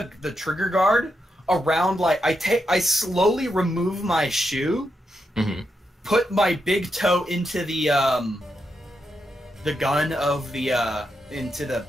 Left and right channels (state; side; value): normal; both; correlation 0.84